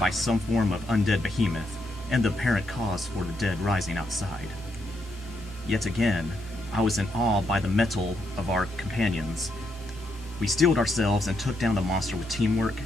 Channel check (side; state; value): both; normal; correlation 0.79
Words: some form of undead behemoth, and the apparent cause for the dead rising outside. Yet again, I was in awe by the mettle of our companions. We steeled ourselves and took down the monster with teamwork,